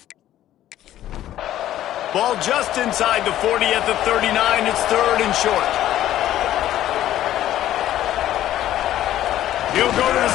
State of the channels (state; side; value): quieter; right; 12.8 dB